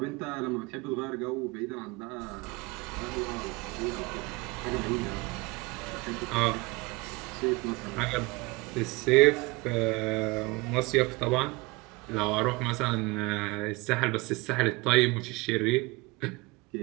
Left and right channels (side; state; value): left; quieter; 24.4 dB